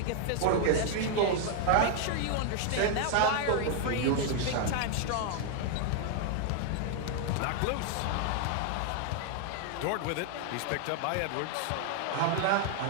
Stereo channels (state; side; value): different; both; correlation 0.00